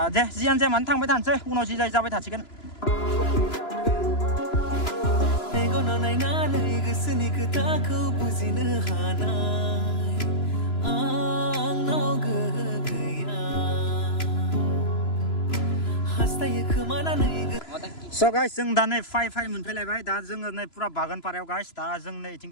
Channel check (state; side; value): late; right; 3.0 ms